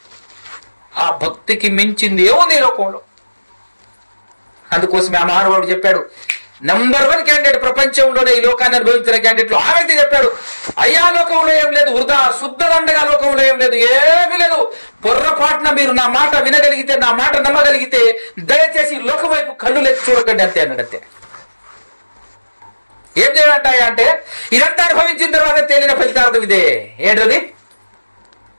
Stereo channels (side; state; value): both; inverted; correlation -1.00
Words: ఆ భక్తికి మించింది ఏముంది ఈ లోకంలో? అందుకోసమే ఆ మహానుభావుడు చెప్పాడు, నంబర్ 1 క్యాండిడేట్ ప్రపంచంలోనే ఈ లోకాన్ని అనుభవించిన క్యాండిడేట్లు ఆ వ్యక్తి చెప్పాడు, అయ్యా లోకంలో ఏం లేదు, వృధా శుద్ధ దండగా లోకంలో ఏం లేదు, ఏమీ లేదు. పొర్రపాటున మీరు నా మాట వినగలిగితే, నా మాట నమ్మగలిగితే దయచేసి లోకం వైపు కళ్ళు లెక్కి చూడకండి అంతే అన్నాడు. అంతే. ఏం చేయాలంటాయా అంటే, ఇదంతా అనుభవించిన తర్వాత తేలిన ఫలితార్థం ఇదే. ఏంటది?